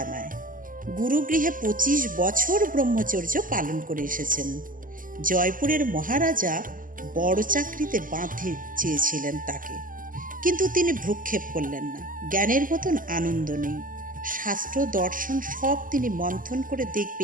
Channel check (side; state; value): left; late; 0.39 ms